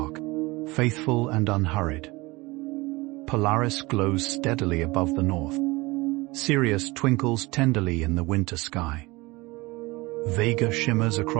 faithful and unhurried. Polaris glows steadily above the north. Sirius twinkles tenderly in the winter sky. Vega shimmers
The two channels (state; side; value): quieter; left; 22.7 dB